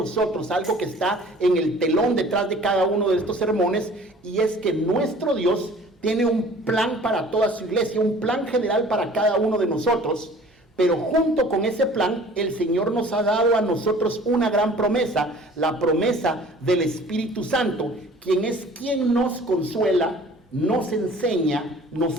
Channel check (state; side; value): normal; both; correlation 0.48